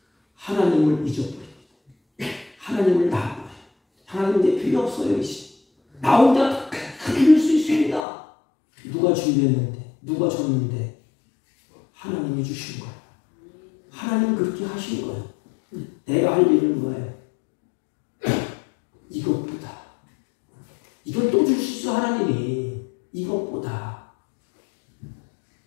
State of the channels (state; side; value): drops out; right; at 8.1 s